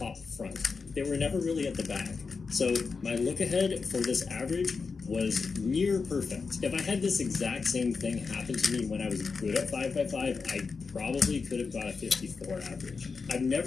front. They were never really at the back. So my look ahead for this average was near perfect. If I had this exact same thing happen to me when I was good at 5x5, I probably could have got a 54 average. I've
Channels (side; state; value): right; quieter; 4.9 dB